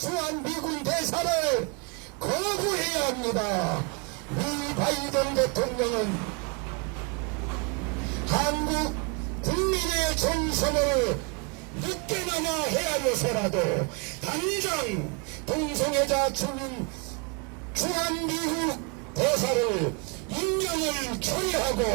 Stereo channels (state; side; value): quieter; left; 32.6 dB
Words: 대사를 거부해야 합니다. 미 바이든 대통령은 한국 국민의 정선을 늦게나마 헤아려서라도 당장 동성애자 주한미국 대사를 임명을